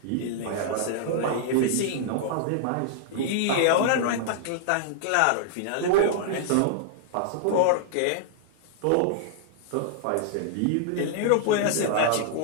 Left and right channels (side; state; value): both; different; correlation -0.01